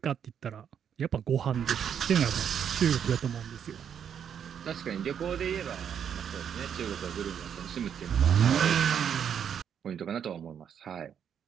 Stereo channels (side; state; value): left; quieter; 8.3 dB